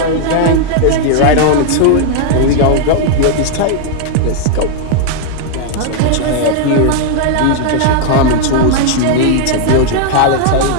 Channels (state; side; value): different; both; correlation 0.00